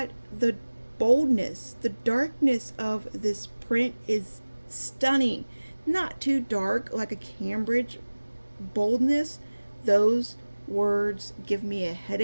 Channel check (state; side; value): inverted; both; correlation -1.00